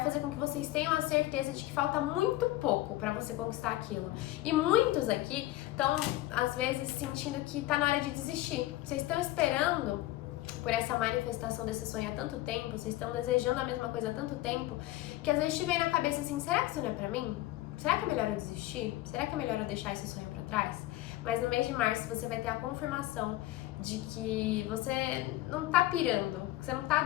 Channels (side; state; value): right; quieter; 16.4 dB